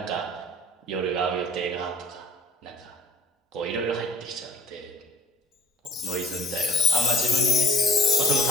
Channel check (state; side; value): normal; both; correlation 0.52